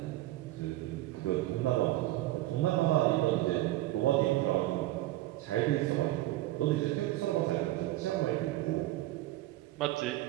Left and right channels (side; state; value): left; quieter; 16.5 dB